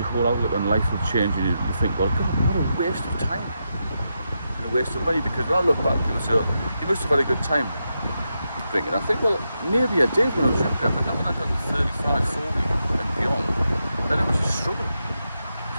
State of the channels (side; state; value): both; inverted; correlation -0.86